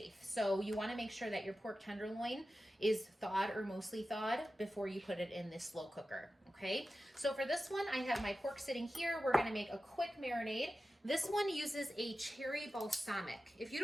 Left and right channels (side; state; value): both; normal; correlation 0.93